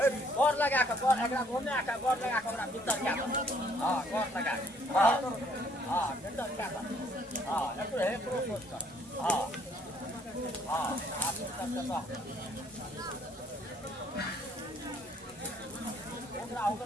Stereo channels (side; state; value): both; normal; correlation 0.63